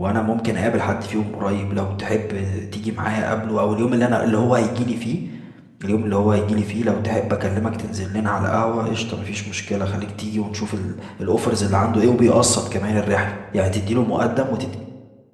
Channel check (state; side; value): identical; both; correlation 1.00